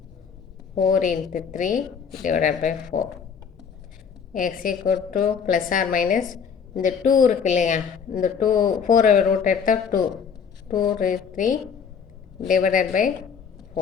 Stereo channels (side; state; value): right; quieter; 6.7 dB